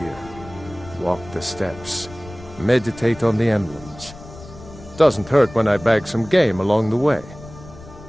Walk the steps. Meditate on the emblems. Doesn't hurt when I bag some game along the way.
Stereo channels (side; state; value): left; noise; rumble, 17 dB below the sound